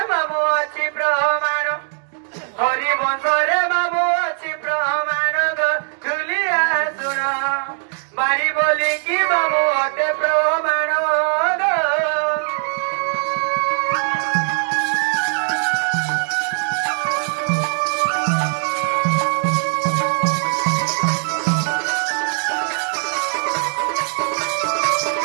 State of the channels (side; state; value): left; silent; 57 dB below the other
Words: মামু ଅଛି প্রমাণ হরিবংশরে মামু ଅଛି প্রমাণ গো ঝুলিয়া শুণ বাড়ি বলি কি মামু অতে প্রমাণ গো